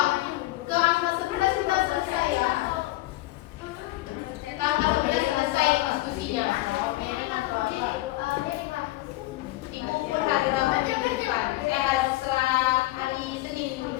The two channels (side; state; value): right; quieter; 18.4 dB